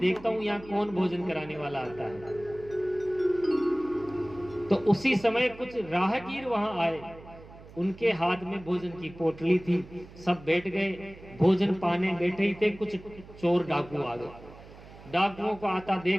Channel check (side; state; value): right; noise; hum, 19 dB below the sound